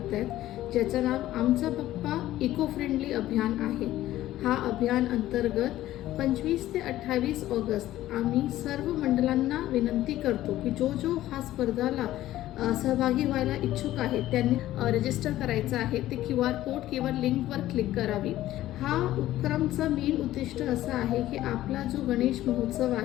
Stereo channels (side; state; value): right; quieter; 14.5 dB